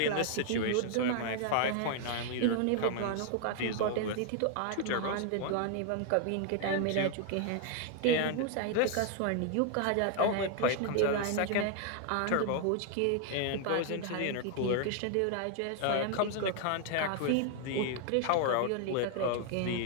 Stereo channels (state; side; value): different; both; correlation 0.00